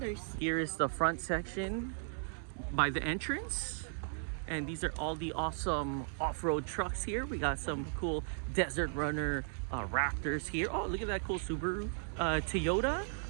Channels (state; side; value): silent; left; 54 dB below the other